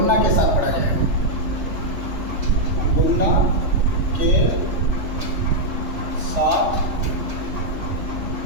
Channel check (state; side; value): late; left; 3.4 ms